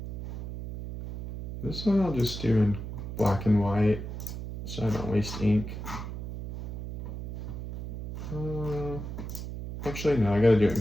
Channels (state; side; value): noise; right; hum, 8 dB below the sound